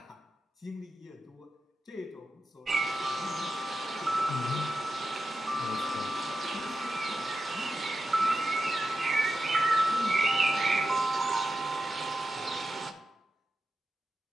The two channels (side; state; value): both; normal; correlation 0.90